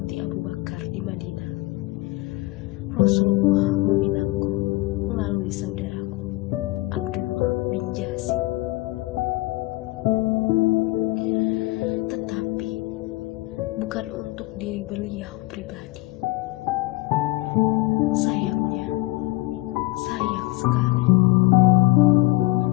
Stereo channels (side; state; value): right; quieter; 20.7 dB